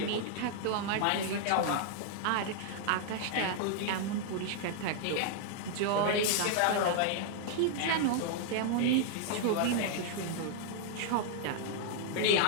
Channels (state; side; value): different; both; correlation -0.01